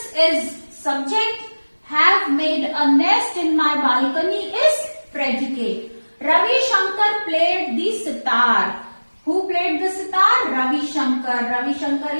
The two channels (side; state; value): both; inverted; correlation -1.00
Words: is subject, have made a nest in my balcony is predicate. Ravi Shankar played the sitar. Who played the sitar? Ravi Shankar. Ravi Shankar